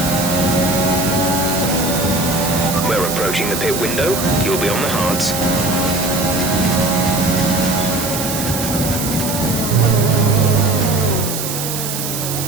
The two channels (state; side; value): noise; right; hiss, 5 dB below the sound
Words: We're approaching the pit window. You'll be on the hards.